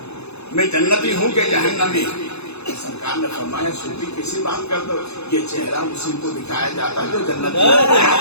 میں جنتی ہوں کہ جہنمی. سرکار نے فرمایا سوتی کسی بات کر دو، یہ چہرہ اسی کو دکھایا جاتا ہے جو جنتی ہے.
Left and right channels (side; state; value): right; late; 0.80 ms